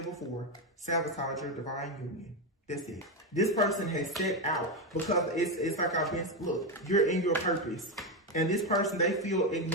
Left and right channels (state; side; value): normal; both; correlation 0.10